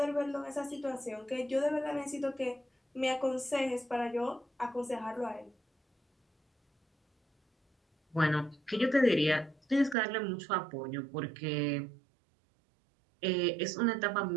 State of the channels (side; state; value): left; drops out; at 10.0 s